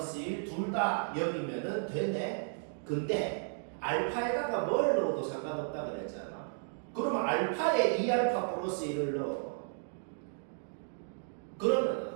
1 둘 다 0이면은 되네. 근데 알파에다가 뭘 넣어도 상관없다 그랬잖아. 그러면 알파에 2알파 플러스 1을 넣어.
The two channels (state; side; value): silent; left; digital silence